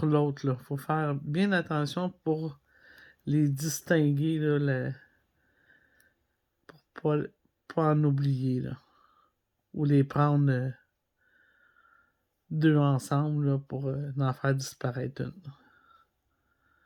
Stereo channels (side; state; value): both; identical; correlation 1.00